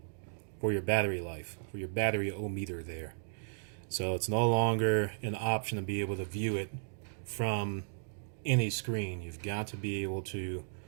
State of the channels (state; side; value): silent; left; digital silence